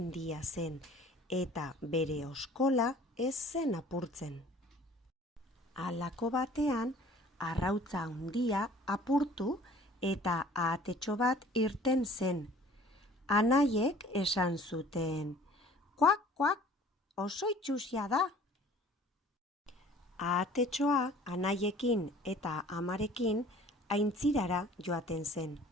zen eta bere oskola ez zen apurtzen. Halako batean arrautza handia apurtu eta ahatetxo bat irten zen. Anaiek esan zuten, "Kuak, kuak, oso itsusia da." Ahatetxoa anaiekin eta amarekin aintzirara joaten zen.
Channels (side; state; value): both; normal; correlation 0.50